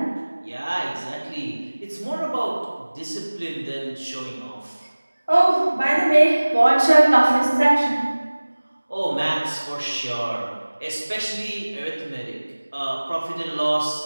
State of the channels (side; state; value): both; inverted; correlation -1.00